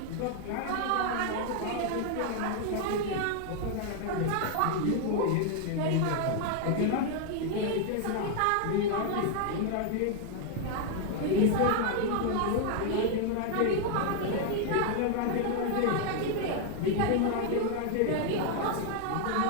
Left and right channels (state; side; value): different; both; correlation 0.00